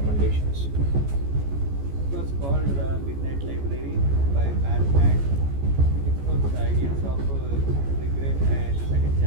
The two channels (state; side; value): late; left; 14 ms